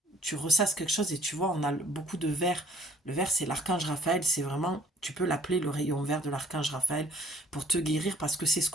Tu ressasses quelque chose et tu vois, on a beaucoup de vert. Le vert, c'est l'archange Raphaël, c'est vraiment, tu peux l'appeler le rayon vert de l'archange Raphaël pour te guérir parce que c'est ce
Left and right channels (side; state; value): both; normal; correlation 0.56